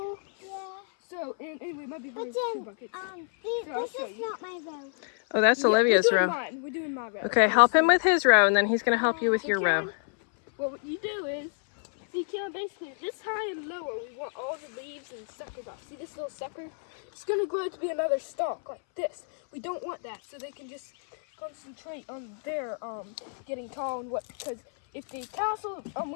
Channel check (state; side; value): silent; right; 59 dB below the other